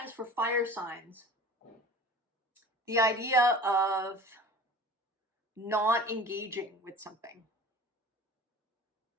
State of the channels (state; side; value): normal; both; correlation 0.41